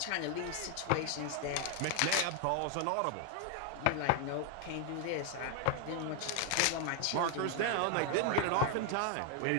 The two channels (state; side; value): different; both; correlation 0.00